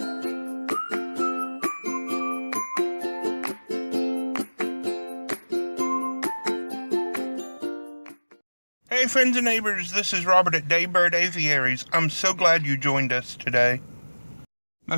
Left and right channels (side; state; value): both; inverted; correlation -1.00